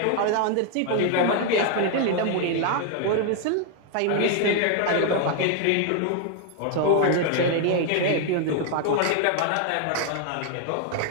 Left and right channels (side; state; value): both; different; correlation 0.00